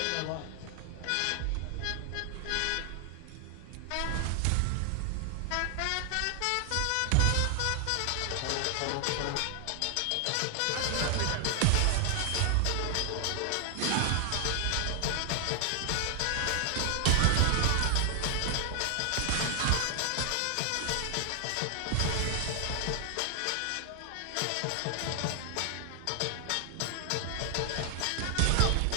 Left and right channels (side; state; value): both; different; correlation 0.00